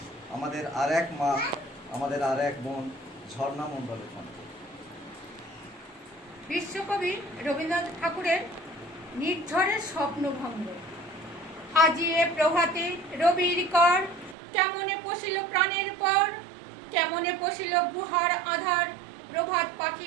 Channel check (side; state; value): left; drops out; at 14.4 s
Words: আমাদের আর এক মা, আমাদের আর এক বোন ঝর্ণা মণ্ডলের কণ্ঠে। বিশ্বকবি রবীন্দ্রনাথ ঠাকুরের নির্ঝরের স্বপ্নভঙ্গ। আজি এ প্রভাতে রবির কর, কেমনে পশিল প্রাণের পর, কেমনে পশিল গুহার আধার, প্রভাত